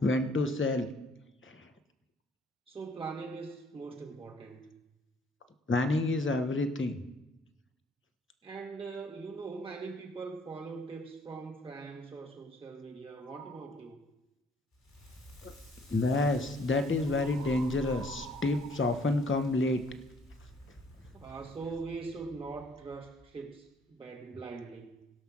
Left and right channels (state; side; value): normal; both; correlation 0.61